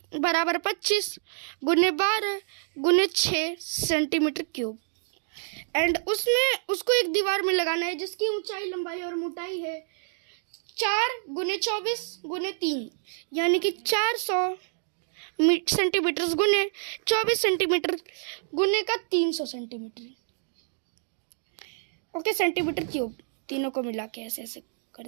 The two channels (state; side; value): silent; left; digital silence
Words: बराबर 25 गुने 12 गुने 6 सेंटीमीटर क्यूब। एंड उसको एक दीवार में लगाना है जिसकी ऊंचाई, लंबाई और मोटाई है 4 गुने 24 गुने 3, यानी कि 400 सेंटीमीटर गुने 24 सेंटीमीटर गुने का 300 सेंटीमीटर। ओके, सेंटीमीटर क्यूब तीनों को मिला के ऐसे ऐसे कर